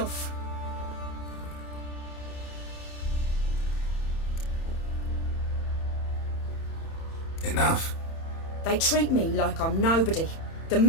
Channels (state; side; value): late; right; 30 ms